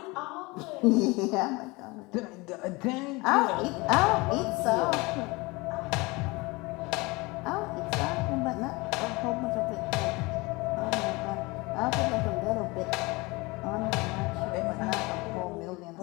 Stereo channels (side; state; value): right; quieter; 24.4 dB